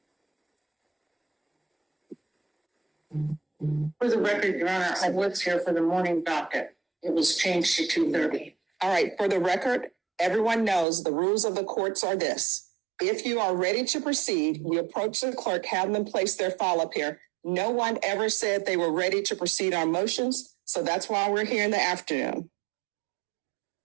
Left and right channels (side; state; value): left; drops out; at 10.9 s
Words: For the record, Your Honor, I was here for the morning docket. It was changed to 2:30. All right, for the record, everyone knows the rules of the courts are this. If you are ready to proceed, you approach the clerk, have them place their file up here. No one ever said they were ready to proceed on motions, so that's why we're here in the afternoon.